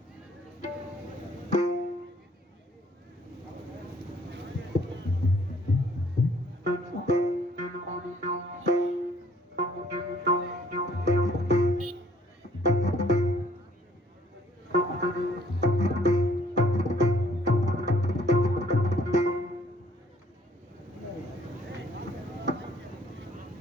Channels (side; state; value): both; normal; correlation 0.61